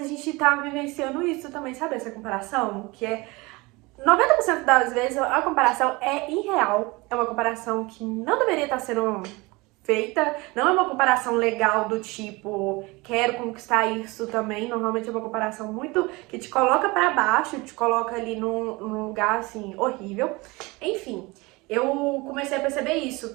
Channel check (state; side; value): quieter; left; 24.0 dB